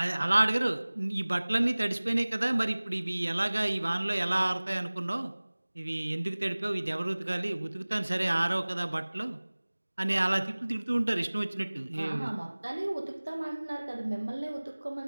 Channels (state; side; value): inverted; both; correlation -1.00